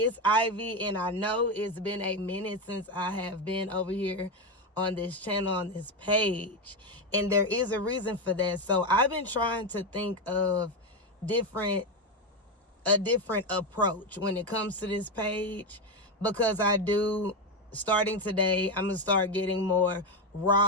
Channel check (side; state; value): both; normal; correlation 0.11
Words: Ivy, and I know it's been a minute since I have been over here on this channel, on this page. And there is a reason for that. So I've been trying to think of a different approach when it comes to this page, because starting today, I'm going to start getting more